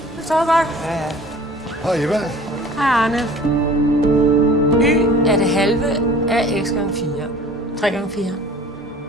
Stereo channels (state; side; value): normal; both; correlation 0.47